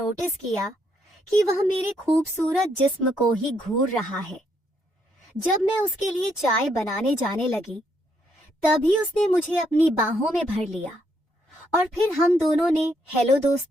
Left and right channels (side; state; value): both; normal; correlation 0.74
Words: किया कि वह मेरे खूबसूरत जिस्म को ही घूर रहा है। जब मैं उसके लिए चाय बनाने जाने लगी, तभी उसने मुझे अपनी बाहों में भर लिया और फिर हम दोनों ने हेलो